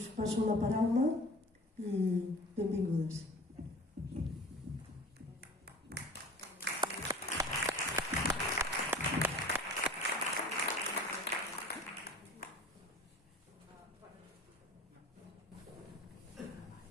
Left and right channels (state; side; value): normal; both; correlation 0.41